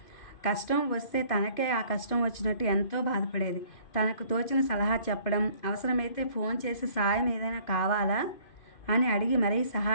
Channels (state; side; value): late; right; 2.4 ms